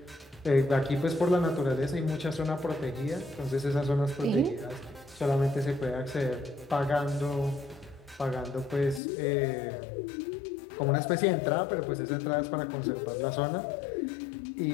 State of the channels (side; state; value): right; drops out; at 9.0 s